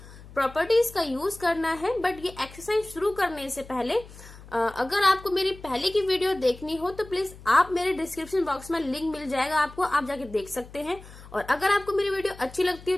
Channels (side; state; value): left; noise; hum, 18 dB below the sound